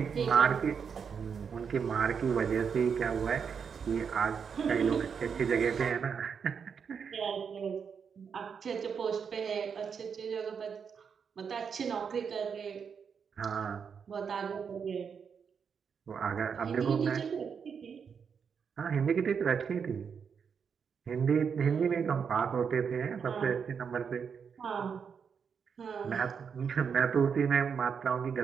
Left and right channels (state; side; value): quieter; left; 6.6 dB